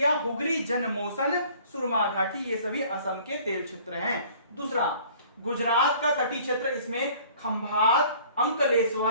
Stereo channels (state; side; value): inverted; both; correlation -0.52